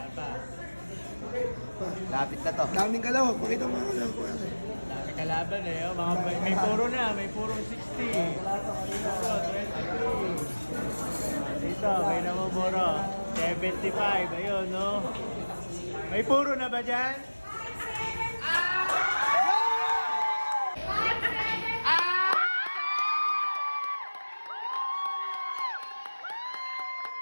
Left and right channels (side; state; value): both; inverted; correlation -1.00